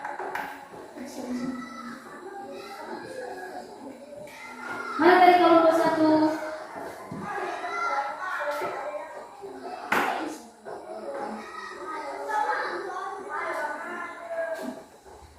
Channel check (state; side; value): identical; both; correlation 1.00